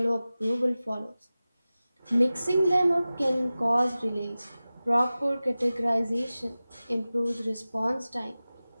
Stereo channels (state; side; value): inverted; both; correlation -0.96